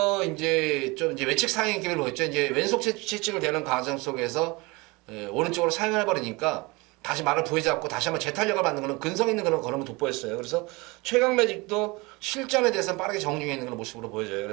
이제 좀 이제 외측 상행 기를 보였죠. 이제 왼속 채찍을 대는 과정 속에서 오른쪽으로 사용해 버리니까 다시 말을 부여잡고 다시 한번 재탄력을 받는 그런 근성 있는 그런 걸음을 돋보였어요. 그래서 최강 매직도 실전에 대해서는 빠르게 정중해 있는 그런 모습으로 보여져요.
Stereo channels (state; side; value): quieter; left; 25.0 dB